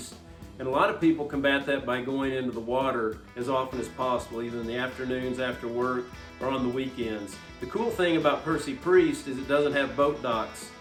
And a lot of people combat that by going into the water as often as possible, either in the afternoons after work or on the weekends. The cool thing about Percy Priest is it doesn't have boat docks,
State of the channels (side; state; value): both; identical; correlation 1.00